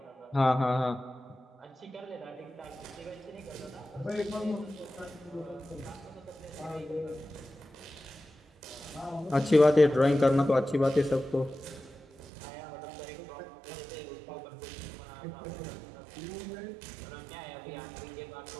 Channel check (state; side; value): drops out; left; at 12.3 s